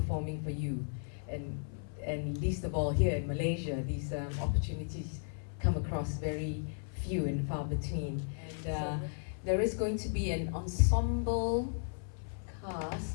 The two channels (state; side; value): silent; right; 54 dB below the other